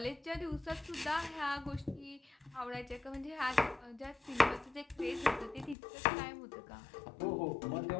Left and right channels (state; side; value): drops out; right; at 5.8 s